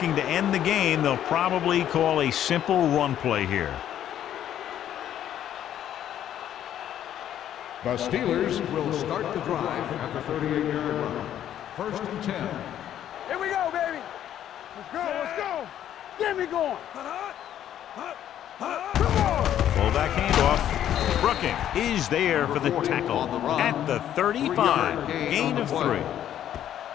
to end the game, they'll probably call a simple run play here. The Steelers will start the drive at the 38-yard line. First and 10. Here we go, baby. Let's go. Get me going. Come on. Fullback handoff. Brooking is there for the tackle at the 35. Gain of 3.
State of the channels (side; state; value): right; quieter; 10.9 dB